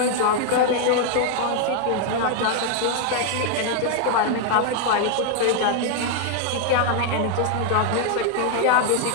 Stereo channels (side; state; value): both; different; correlation 0.00